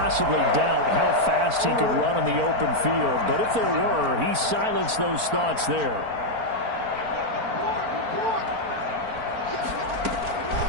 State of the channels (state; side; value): late; left; 4.4 ms